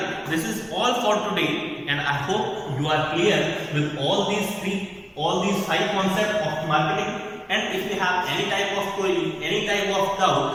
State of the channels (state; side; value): identical; both; correlation 1.00